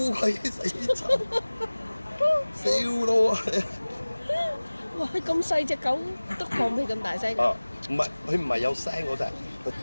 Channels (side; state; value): both; inverted; correlation -1.00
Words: 鬼死臭，笑到啊！哇！咁細隻狗都放屁咁大聲。啊，佢唔係有聲嗰隻，佢